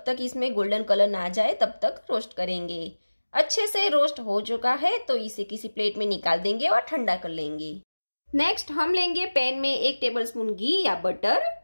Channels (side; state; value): both; inverted; correlation -1.00